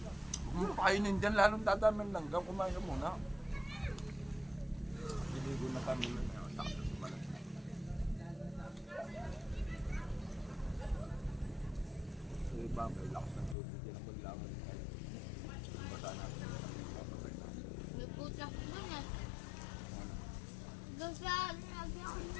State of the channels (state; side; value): drops out; right; at 13.6 s